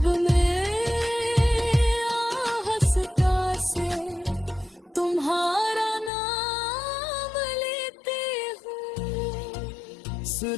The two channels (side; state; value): right; drops out; at 6.1 s